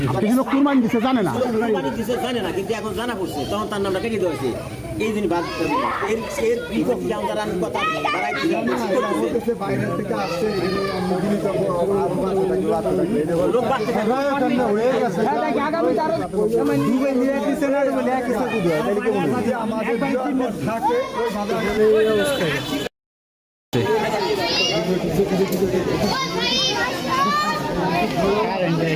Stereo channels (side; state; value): both; identical; correlation 1.00